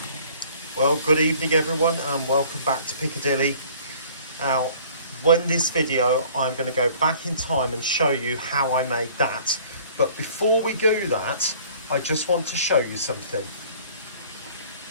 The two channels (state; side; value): inverted; both; correlation -0.52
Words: Well, good evening everyone and welcome back to Piccadilly. Now, in this video, I'm going to go back in time and show you how I made that. But before we do that, I just want to show you something.